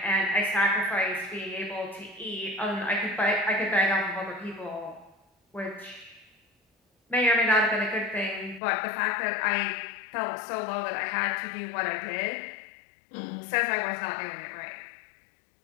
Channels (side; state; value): right; drops out; at 8.6 s